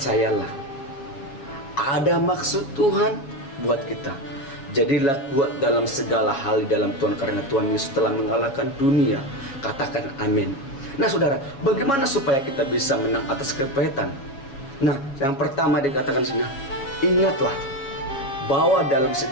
ada maksud Tuhan buat kita. Jadilah kuat dalam segala hal di dalam Tuhan, karena Tuhan Yesus telah mengalahkan dunia. Katakan amin. Nah saudara, bagaimana supaya kita bisa menang atas kepahitan? Nah, yang pertama dikatakan sini, ingatlah bahwa dalam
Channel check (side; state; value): right; late; 7.3 ms